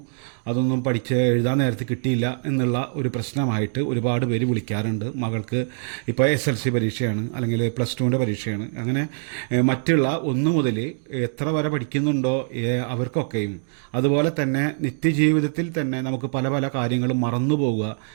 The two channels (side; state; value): left; silent; 58 dB below the other